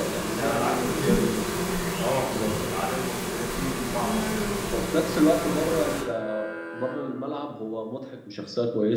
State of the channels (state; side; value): identical; both; correlation 1.00